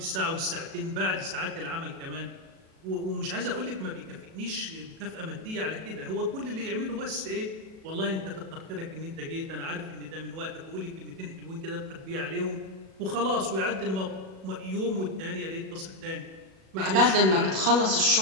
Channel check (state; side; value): late; left; 37 ms